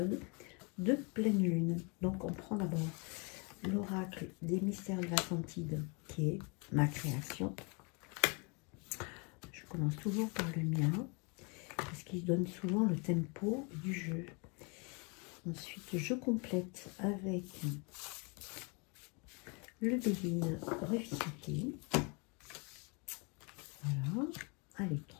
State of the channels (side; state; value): right; quieter; 32.4 dB